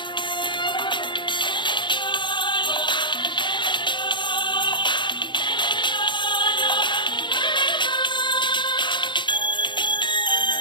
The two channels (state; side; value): late; right; 0.23 ms